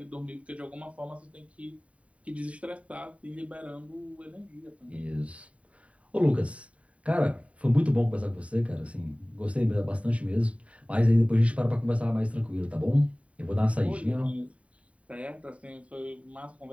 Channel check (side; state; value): left; late; 0.065 ms